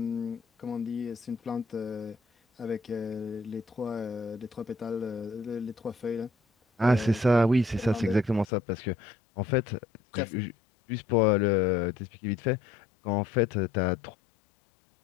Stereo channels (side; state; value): right; drops out; at 8.5 s